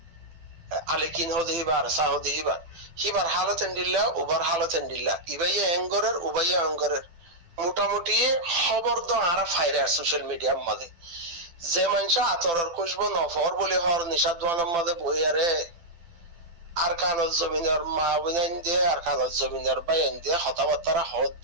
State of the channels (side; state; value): left; late; 12 ms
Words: আলেকিন হদিবা আর সাহদিবা হিবার হালত এন্ডিল্লা উবার হালত এন্ডিল্লা ইবাইয়া এঙ্গরের উবাইয়া অঙ্গরের মোটামুটি খবর তো আর ফাইরে সোশ্যাল মিডিয়ার মাঝে যে মানুষ আতরের খুঁজব নফর বলে হর নিশাদ দোয়ানের মাঝে বইয়ারে আর কানত জমিনের মা বুনাইন দিয়ে আর কানত জমিনের বাইন দিয়ে হতাবার্তারা হদ